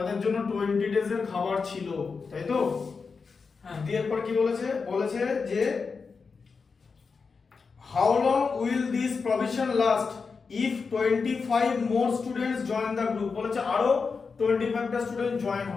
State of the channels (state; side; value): quieter; right; 5.0 dB